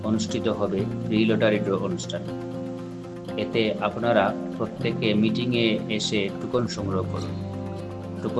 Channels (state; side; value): identical; both; correlation 1.00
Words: অনুষ্ঠিত হবে ফ্রি লটারি ড্র অনুষ্ঠান। এতে আপনারা প্রত্যেকে মিটিংয়ে এসে টুকন সংগ্রহ করুন।